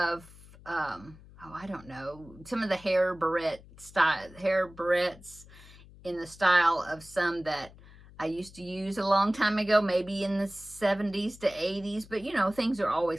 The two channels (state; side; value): noise; left; hum, 21 dB below the sound